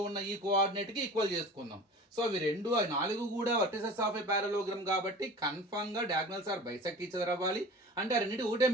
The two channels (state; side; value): normal; both; correlation 0.39